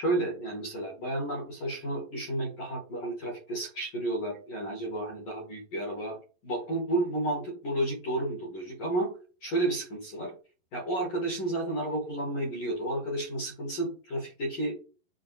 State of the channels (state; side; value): late; right; 11 ms